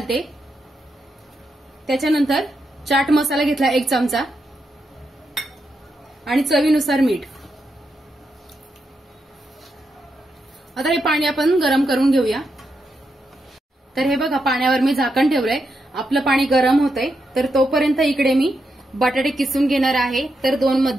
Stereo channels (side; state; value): both; normal; correlation 0.84